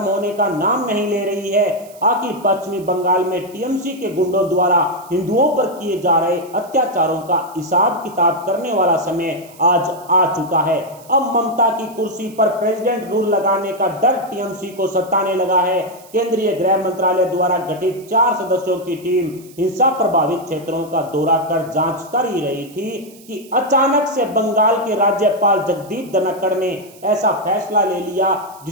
होने का नाम नहीं ले रही है। आखिर पश्चिमी बंगाल में टीएमसी के गुंडों द्वारा हिंदुओं पर किए जा रहे अत्याचारों का हिसाब किताब करने वाला समय आज आ चुका है। अब ममता की कुर्सी पर प्रेसिडेंट रूल लगाने का डर टीएमसी को सताने लगा है। केंद्रीय गृह मंत्रालय द्वारा गठित 4 सदस्यों की टीम हिंसा प्रभावित क्षेत्रों का दौरा कर जांच कर ही रही थी कि अचानक से बंगाल के राज्यपाल जगदीप धनखड़ ने ऐसा फैसला ले लिया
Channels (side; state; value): right; noise; hiss, 23 dB below the sound